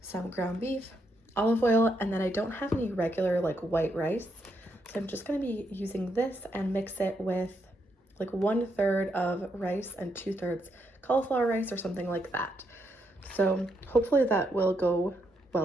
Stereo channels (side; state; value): both; normal; correlation 0.79